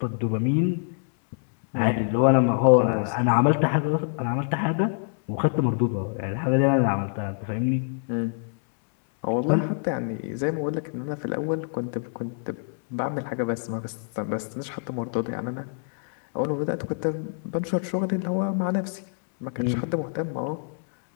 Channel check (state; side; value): silent; right; digital silence